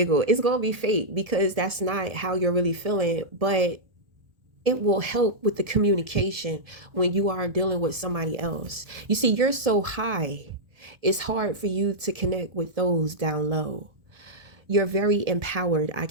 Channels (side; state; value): left; late; 1.7 ms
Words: It's gonna be fake because that's not how you're really feeling, but it will help with the communication when you are dealing with somebody else. You see, you're so high, it's hard for you to connect with those down low. You're very empowered, I